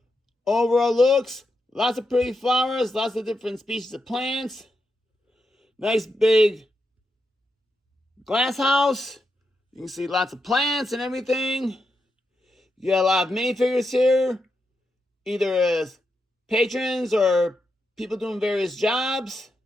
overall looks, lots of pretty flowers, lots of different species of plants. Nice big glass house. You can see lots of plants and everything. You got a lot of minifigures here, either as patrons or people doing various jobs.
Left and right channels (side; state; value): both; normal; correlation 0.85